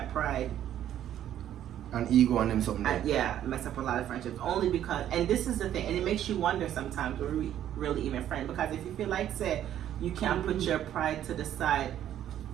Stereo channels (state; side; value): quieter; left; 11.2 dB